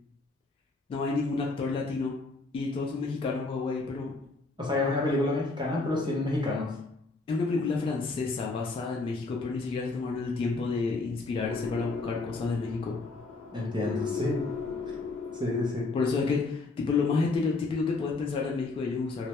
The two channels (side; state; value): right; quieter; 3.5 dB